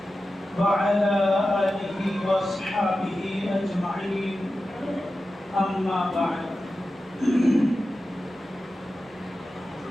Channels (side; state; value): both; normal; correlation 0.93